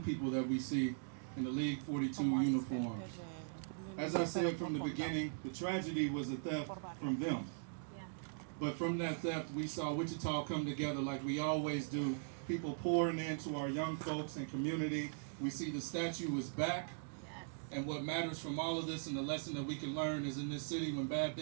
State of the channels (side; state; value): left; silent; digital silence